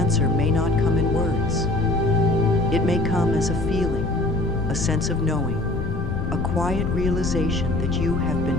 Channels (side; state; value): left; noise; rumble, 5 dB below the sound